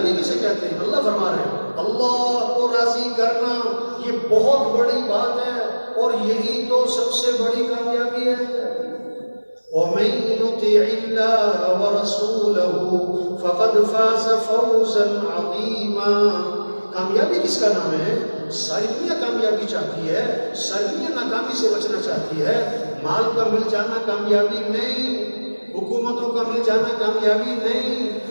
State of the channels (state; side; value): inverted; both; correlation -1.00